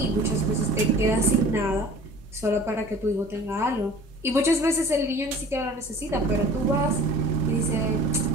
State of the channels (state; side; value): normal; both; correlation 0.45